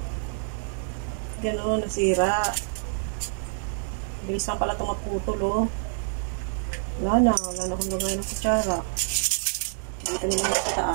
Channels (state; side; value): silent; left; digital silence